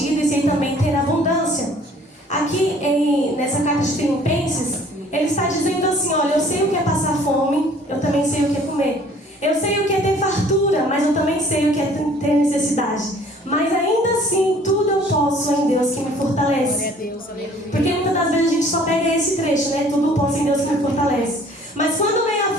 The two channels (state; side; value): normal; both; correlation 0.54